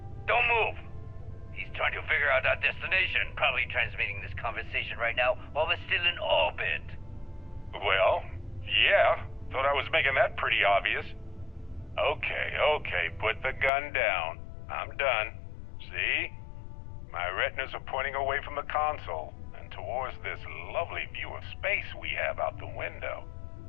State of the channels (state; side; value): drops out; right; at 13.7 s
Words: Don't move! He's trying to figure out our destination, probably transmitting this conversation right now while we're still in orbit. Well, yeah, thought I was making that pretty obvious. Okay, put the gun down. I'm done. See? My retinas are pointing away from the console and towards this lovely view of space we have out the window.